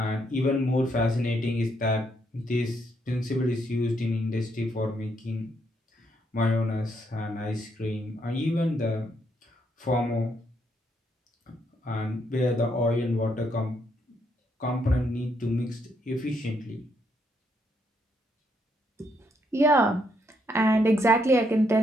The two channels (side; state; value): both; normal; correlation 0.74